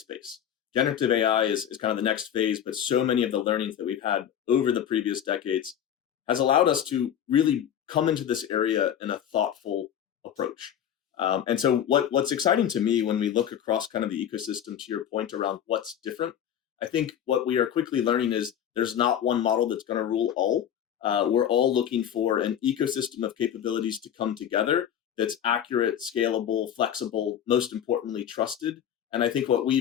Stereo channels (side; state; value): right; quieter; 9.7 dB